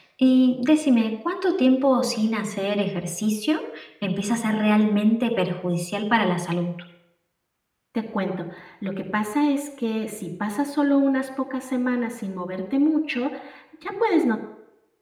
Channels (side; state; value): both; identical; correlation 1.00